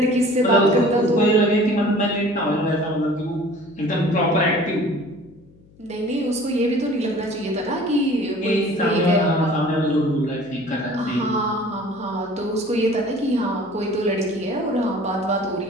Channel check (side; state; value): left; noise; hum, 27 dB below the sound